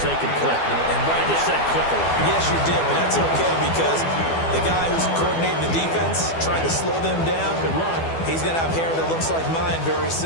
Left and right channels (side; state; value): right; late; 12 ms